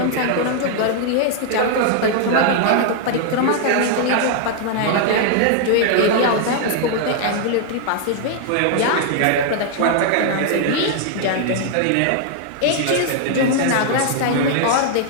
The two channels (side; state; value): both; different; correlation 0.00